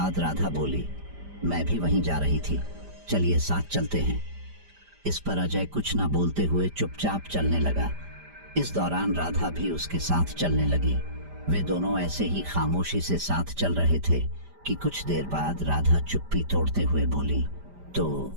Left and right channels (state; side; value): late; left; 5.0 ms